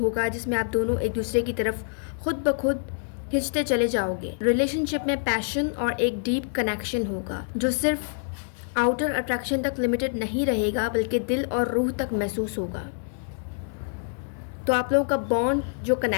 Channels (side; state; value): right; silent; 61 dB below the other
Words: जिसमें आप दोनों एक दूसरे की तरफ खुद ब खुद खिंचते चले जाओगे। रिलेशनशिप में पैशन और एक डीप कनेक्शन होगा जो सिर्फ आउटर अट्रैक्शन तक लिमिटेड नहीं रहेगा, बल्कि दिल और रूह तक महसूस होगा। तो आप लोगों का बॉन्ड, जो